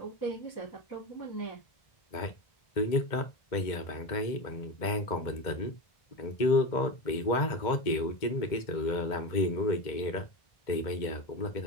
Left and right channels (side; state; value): right; late; 2.1 ms